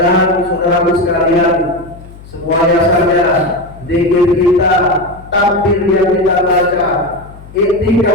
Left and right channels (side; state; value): left; noise; hum, 19 dB below the sound